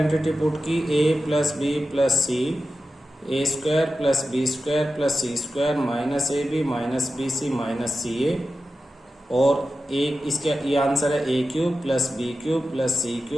पुट की, a plus B plus C, a square plus B square plus C square minus A B minus B C minus C a, और एक इसके ये आंसर है ए cube plus B cube plus सी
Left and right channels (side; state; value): both; normal; correlation 0.92